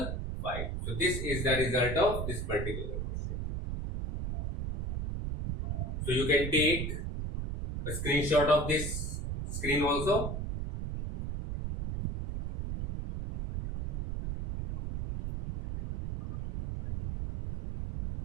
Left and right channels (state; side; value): noise; right; rumble, 3 dB below the sound